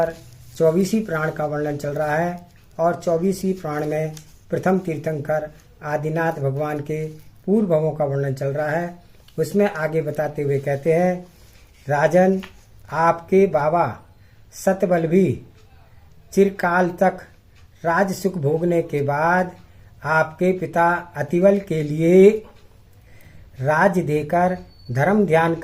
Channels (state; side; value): identical; both; correlation 1.00